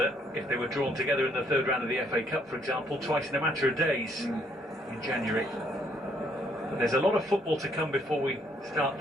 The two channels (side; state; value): both; normal; correlation 0.68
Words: if they were drawn together in the third round of the FA Cup, for example, twice in a matter of days in January. But there's a lot of football to come before we start